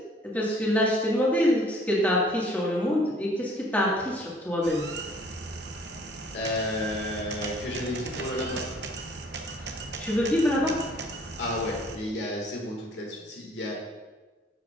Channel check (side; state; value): both; normal; correlation 0.56